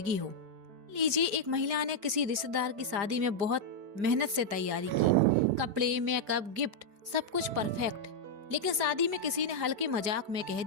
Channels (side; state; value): left; late; 5.0 ms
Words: हो। लीजिए, एक महिला ने किसी रिश्तेदार की शादी में बहुत मेहनत से तैयारी की। कपड़े, मेकअप, गिफ्ट, सब कुछ परफेक्ट। लेकिन शादी में किसी ने हल्के मजाक में कह